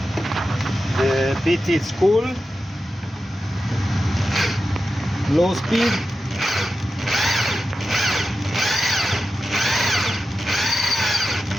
the bit is cool, low speed.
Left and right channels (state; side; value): normal; both; correlation 0.92